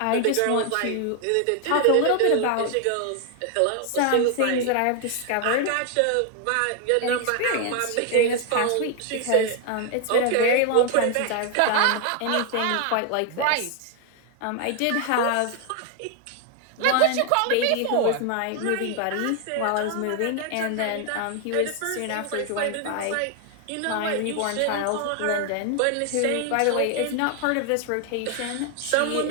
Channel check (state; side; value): different; both; correlation 0.00